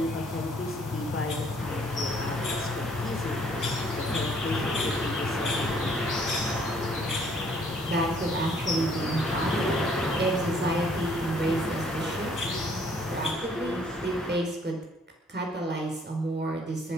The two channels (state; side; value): normal; both; correlation 0.62